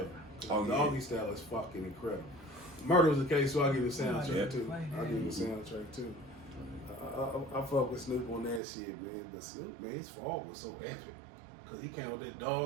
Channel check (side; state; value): left; drops out; at 8.6 s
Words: The Doggy Style is fucking incredible. Murder was the case, so I'll give it a soundtrack too. I'll give it a soundtrack too. I fuck with Snoop on that shit, man. But Snoop, man, his fall was so epic. Cause he came with that